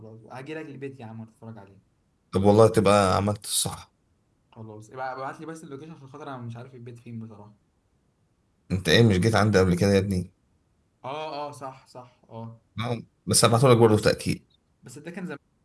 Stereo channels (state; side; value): identical; both; correlation 1.00